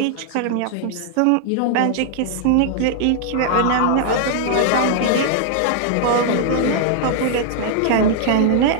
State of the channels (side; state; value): both; different; correlation -0.01